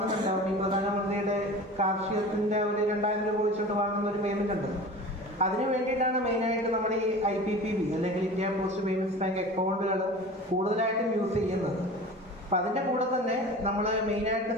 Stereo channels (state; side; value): normal; both; correlation 0.37